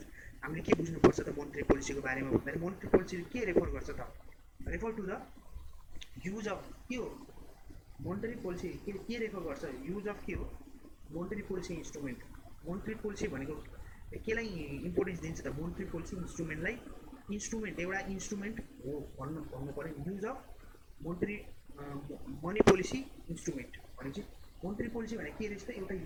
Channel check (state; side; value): identical; both; correlation 1.00